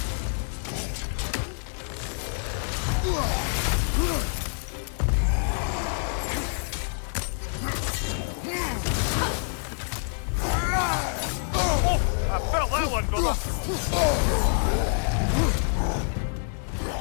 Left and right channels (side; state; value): right; silent; 56 dB below the other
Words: I felt that one, brother!